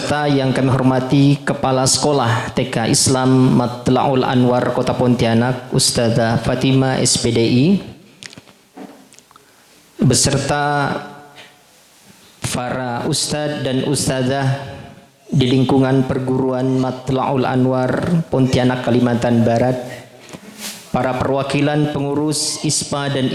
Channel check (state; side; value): identical; both; correlation 1.00